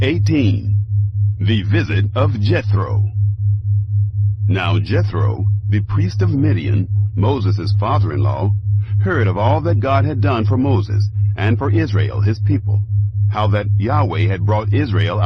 18. The Visit of Jethro. Now Jethro, the priest of Midian, Moses' father-in-law, heard of all that God had done for Moses and for Israel his people, how that Yahweh had brought Israel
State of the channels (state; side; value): identical; both; correlation 1.00